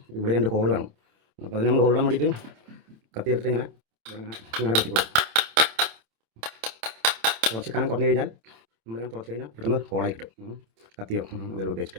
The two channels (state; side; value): late; left; 27 ms